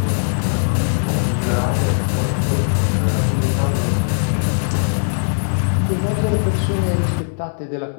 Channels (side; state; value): right; silent; digital silence